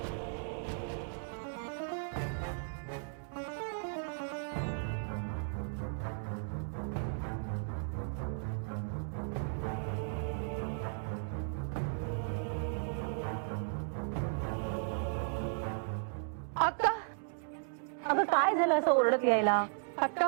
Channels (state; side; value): silent; left; digital silence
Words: अक्का, अगं काय झालं असं ओरडत यायला? अक्का,